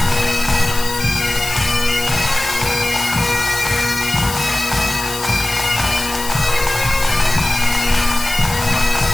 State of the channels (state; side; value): noise; left; hiss, 9 dB below the sound